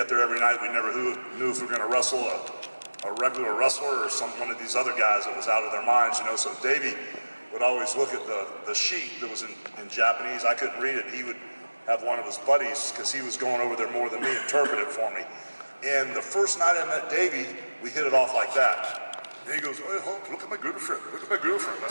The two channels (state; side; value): inverted; both; correlation -1.00